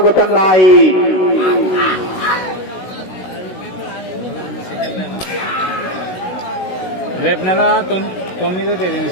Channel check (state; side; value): late; right; 16 ms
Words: రేపు నెల 9వ తేదీ